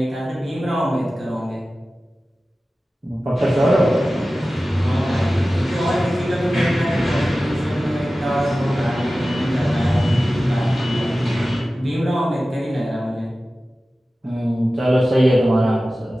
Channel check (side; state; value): both; normal; correlation 0.95